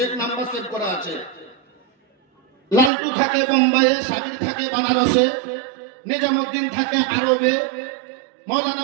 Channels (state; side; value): drops out; left; at 2.9 s